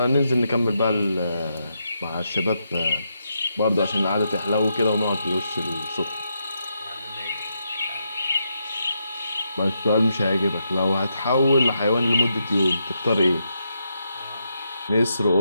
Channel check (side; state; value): both; inverted; correlation -0.82